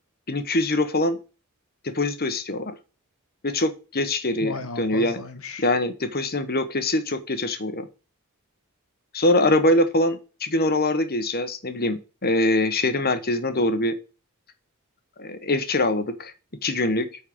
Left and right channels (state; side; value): normal; both; correlation 0.09